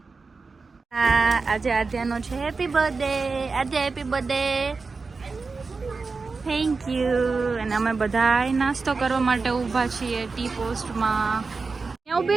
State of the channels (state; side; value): quieter; left; 4.3 dB